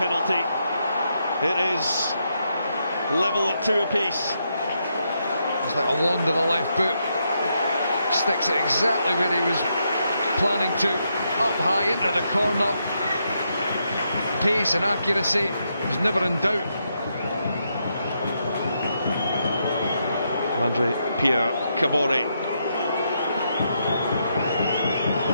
It is level at 2 apiece. It's like a wand of the left boot. Sticks it exactly where he was planning to. Up high into the corner. Pace and accuracy was never in doubt. Andre Pierre Cabore.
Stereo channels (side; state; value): both; inverted; correlation -0.80